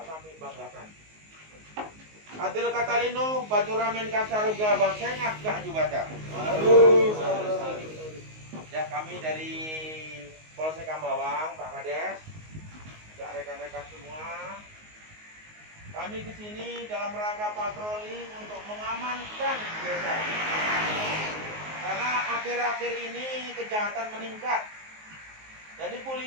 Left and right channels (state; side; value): late; left; 19 ms